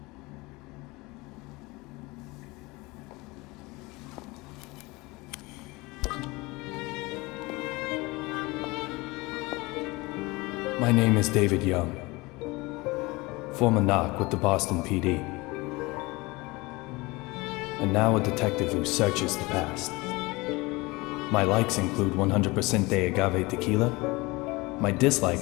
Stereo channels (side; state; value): right; quieter; 23.4 dB